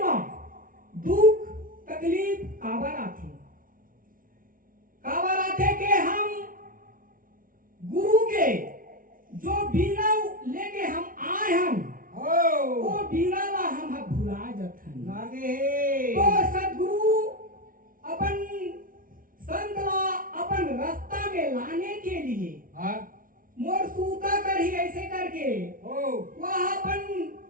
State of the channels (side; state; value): left; late; 0.40 ms